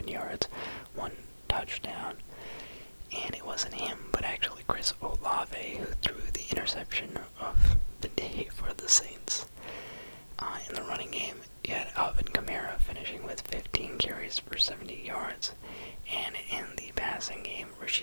yards, 1 touchdown, and it wasn't him, but actually Chris Olave who threw the interception of the day for the Saints. In the running game, you had Alvin Kamara finishing with 15 carries for 70 yards, and in the passing game,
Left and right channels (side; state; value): both; inverted; correlation -1.00